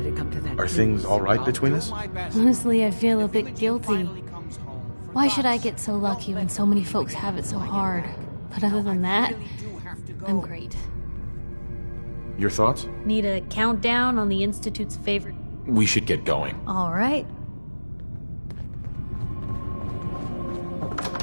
it come to that. Are things all right between us? Honestly, I feel a bit guilty. Why should I get so lucky when so many folks have it so hard? But other than that, I'm great. Your thoughts? Need a countdown on the Institute's favorite? We should get going. All right.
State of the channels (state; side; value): inverted; both; correlation -1.00